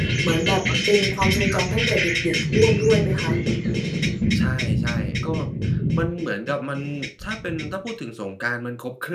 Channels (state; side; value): identical; both; correlation 1.00